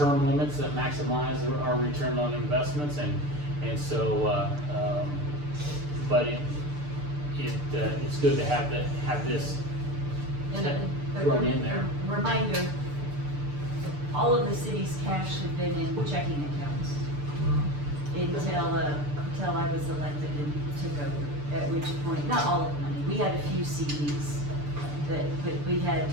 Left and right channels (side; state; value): left; late; 6.8 ms